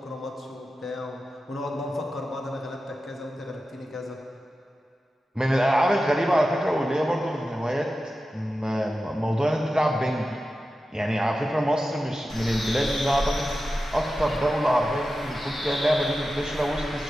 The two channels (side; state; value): both; normal; correlation 0.92